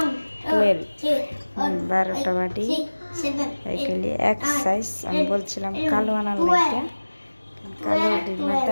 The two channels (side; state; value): both; inverted; correlation -1.00